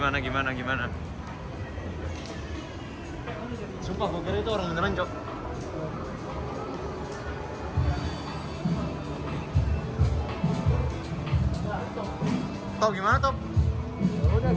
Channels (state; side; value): identical; both; correlation 1.00